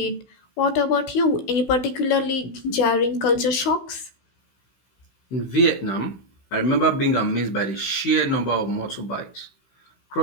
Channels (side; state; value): right; late; 16 ms